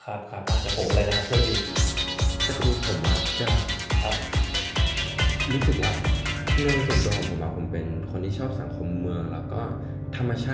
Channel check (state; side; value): identical; both; correlation 1.00